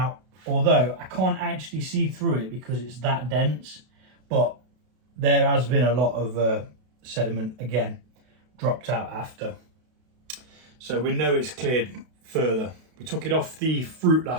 although I can't actually see through it because it's that dense, but there has been a lot of sediment, again, dropped out after. So we know it's cleared further. We took it off the fruit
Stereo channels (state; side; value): late; left; 32 ms